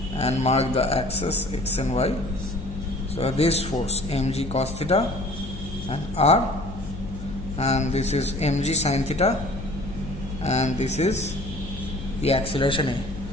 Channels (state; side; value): noise; left; hum, 11 dB below the sound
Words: and mark the axis x and y, so this force mg cos theta and R, and this is mg sin theta, and this is the acceleration